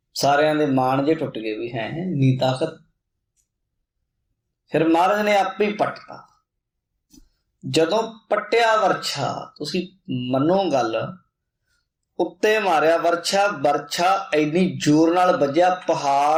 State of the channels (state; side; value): identical; both; correlation 1.00